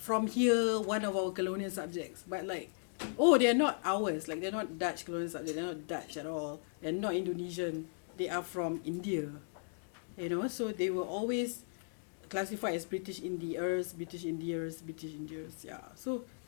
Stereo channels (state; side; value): silent; right; digital silence